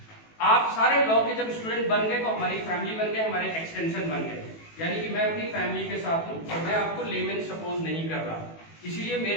आप सारे लॉ के जब स्टूडेंट बन गए तो हमारी फैमिली बन गए, हमारे एक्सटेंशन बन गए, यानी कि मैं अपनी फैमिली के साथ हूं और मैं आपको लेमैन सपोज नहीं कर रहा, इसीलिए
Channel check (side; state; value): right; late; 18 ms